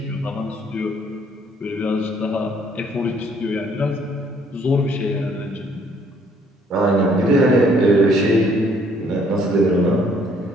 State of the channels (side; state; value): both; normal; correlation 0.63